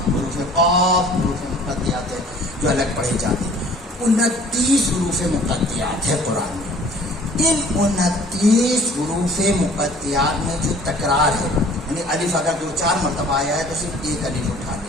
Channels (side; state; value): both; normal; correlation 0.52